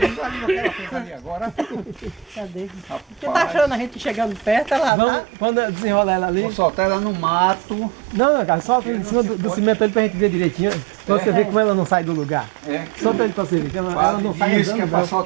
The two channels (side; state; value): left; drops out; at 4.9 s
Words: ela fez ali agora. Cadê? Você tá achando a gente chegando perto, ela Vamos, tá... quando eu desenrolar ela ali. Vou soltar ela no mato. Não, cara, solta em cima do cimento ali pra gente ver direitinho. Pra você ver como ela não sai do lugar. É, Solta ele pra você ver, que ela não sai isso que é andando. pra não.